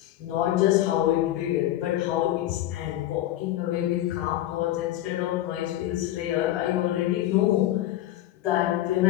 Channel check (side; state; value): right; quieter; 14.0 dB